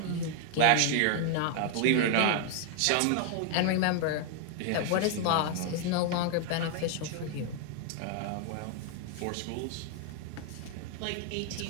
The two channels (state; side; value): different; both; correlation 0.00